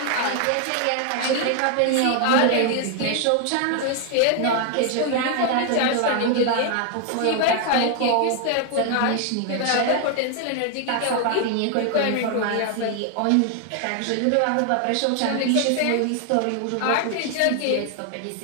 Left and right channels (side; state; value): both; different; correlation 0.00